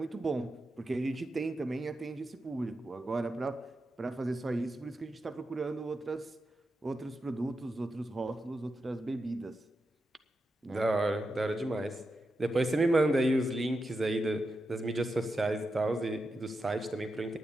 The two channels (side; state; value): both; normal; correlation 0.88